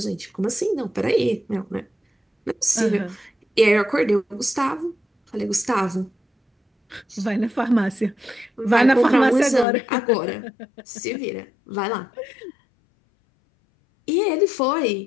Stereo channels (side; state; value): right; drops out; at 9.7 s